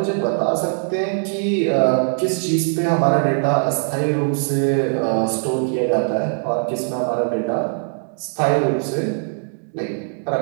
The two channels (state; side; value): silent; left; digital silence